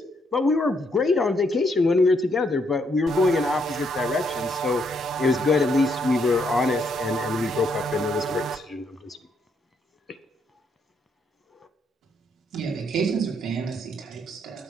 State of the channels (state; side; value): normal; both; correlation 0.74